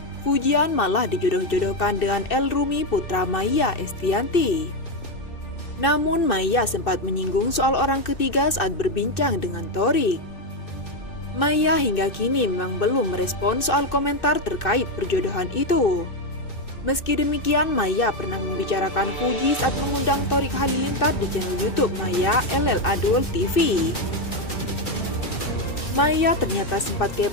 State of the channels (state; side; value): late; right; 2.6 ms